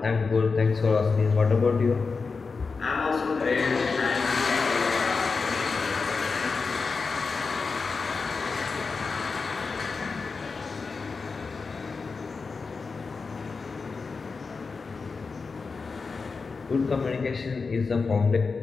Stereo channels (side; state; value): right; quieter; 4.6 dB